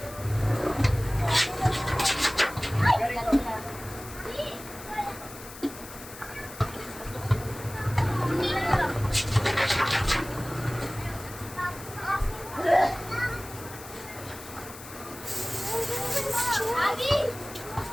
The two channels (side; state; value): left; noise; hiss, 15 dB below the sound